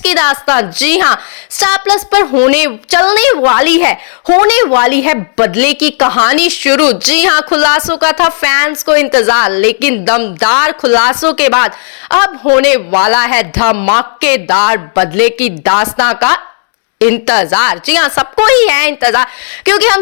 की दास्तां। जी हाँ, स्टार प्लस पर होने वाली है बदले की कहानी शुरू। जी हाँ, खुलासों का था फैंस को इंतजार, लेकिन दमदार खुलासों के बाद अब होने वाला है धमाकेदार बदले की दास्तां का इंतजार। जी हाँ, सबको ही है इंतजार, क्योंकि हम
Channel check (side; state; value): right; silent; digital silence